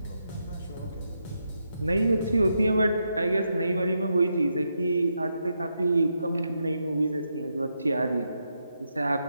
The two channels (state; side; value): inverted; both; correlation -0.83